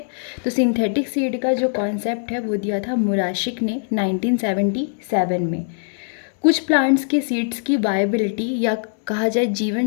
तो सिंथेटिक सीड का जो कॉन्सेप्ट है वो दिया था मुराशिक ने 1977 में। कुछ प्लांट्स के सीड्स की वायबिलिटी या कहा जाए जीवन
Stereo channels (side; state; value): right; silent; digital silence